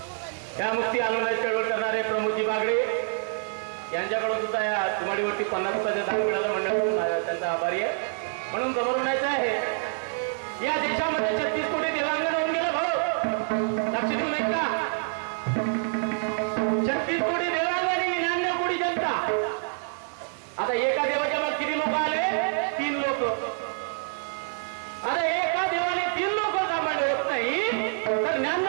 या मुक्ती आंदोलनाची चळवळ करणारे प्रमोदजी बागडे यांच्याकडून सुद्धा या माळीवरती 50 रुपयाचं दान मिळालं. मंडळ त्यांचा आभारी आहे. म्हणून समोर म्हणायचं आहे या देशामध्ये 36 कोटी देवांगण होऊन गेलं भाऊ. लक्ष देऊ नये का? 36 कोटी देवांगण 99 कोटी जनता. आता एका देवाच्या मग किती लोक आले? 3 लोक. आता एका देवाने 3 लोक सांभाळले होत नाही तर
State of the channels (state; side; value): silent; left; 60 dB below the other